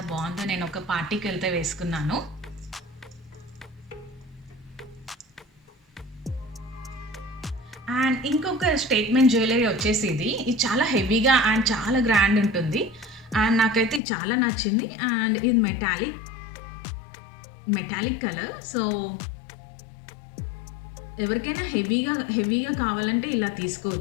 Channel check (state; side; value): drops out; right; at 14.0 s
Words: బాగుందో. నేను ఒక పార్టీకి వెళ్తే వేసుకున్నాను. అండ్ ఇంకొక స్టేట్మెంట్ జ్యువెలరీ వచ్చేసి ఇది చాలా హెవీగా అండ్ చాలా గ్రాండ్ ఉంటుంది. అండ్ నాకైతే చాలా నచ్చింది. అండ్ ఇది మెటాలిక్ కలర్. సో ఎవరికైనా హెవీగా కావాలంటే ఇలా